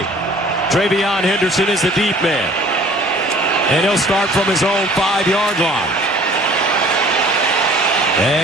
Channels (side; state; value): right; noise; rumble, 29 dB below the sound